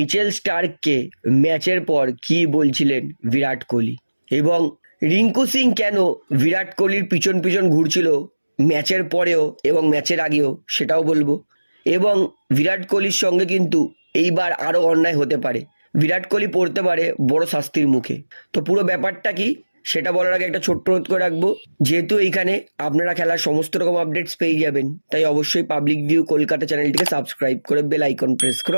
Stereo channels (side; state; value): both; inverted; correlation -1.00